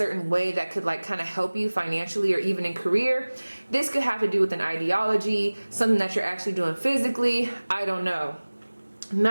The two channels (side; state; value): both; inverted; correlation -1.00